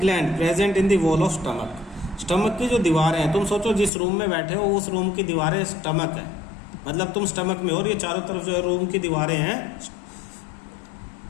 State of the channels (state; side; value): drops out; right; at 3.9 s